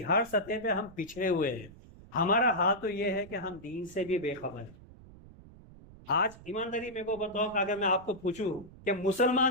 ہر سطح پہ ہم پچھڑے ہوئے ہیں. ہمارا حال تو یہ ہے کہ ہم دین سے بھی بے خبر ہیں. آج ایمانداری میرے کو بتاؤ کہ اگر میں آپ کو پوچھوں کہ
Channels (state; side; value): noise; right; rumble, 20 dB below the sound